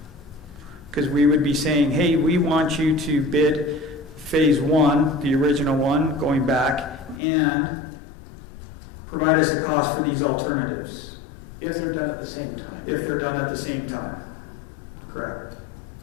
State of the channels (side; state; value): right; drops out; at 7.2 s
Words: Because we would be saying, hey, we want you to bid phase 1, the original one, going back, and provide us a cost for these alternatives. If they're done at the same time. If they're done at the same time. Correct.